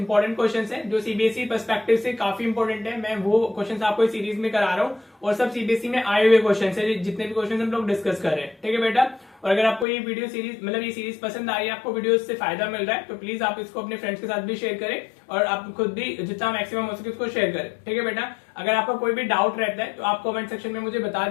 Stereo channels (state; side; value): drops out; right; at 9.9 s